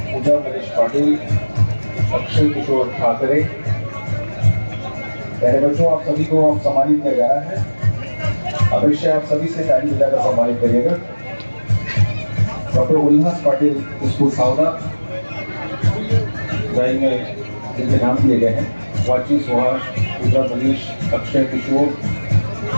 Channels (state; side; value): inverted; both; correlation -1.00